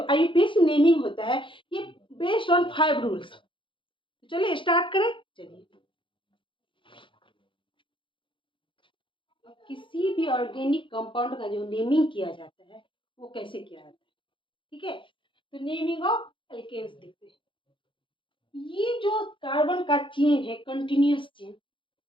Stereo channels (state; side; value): late; right; 0.24 ms